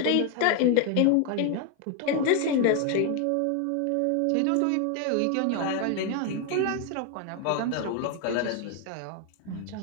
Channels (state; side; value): different; both; correlation 0.01